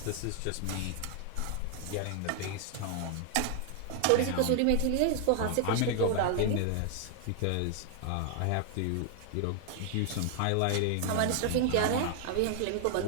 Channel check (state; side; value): different; both; correlation 0.00